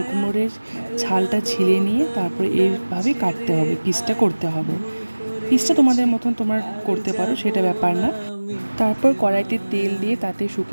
কুমড়োর ছালটা ছিলে নিয়ে তারপরে এইভাবে কাটতে হবে, পিসটা করতে হবে। পিসটা তোমাদের মতন তোমরা করতে পারো, সেটা ব্যাপার না। তারপর কড়াইতে তেল দিয়ে তাতে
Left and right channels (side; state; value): both; inverted; correlation -1.00